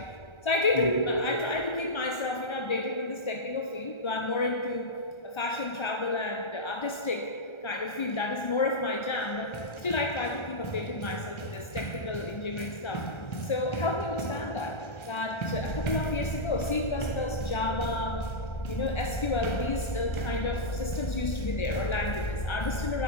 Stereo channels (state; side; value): late; right; 1.3 ms